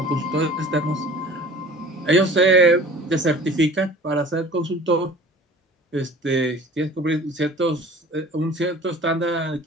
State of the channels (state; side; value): normal; both; correlation 0.45